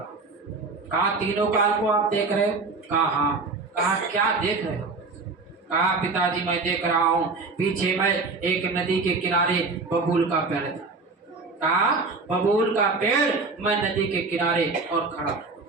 हूँ। कहा तीनों काल को आप देख रहे हो? कहा हाँ। कहा क्या देख रहे हो? कहा पिताजी मैं देख रहा हूँ, पीछे मैं एक नदी के किनारे बबूल का पेड़ था। कहा बबूल का पेड़, मैं नदी के किनारे और खड़ा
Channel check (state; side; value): quieter; left; 3.9 dB